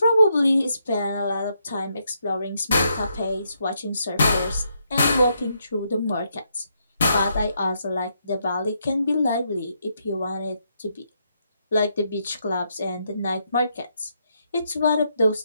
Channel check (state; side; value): inverted; both; correlation -0.78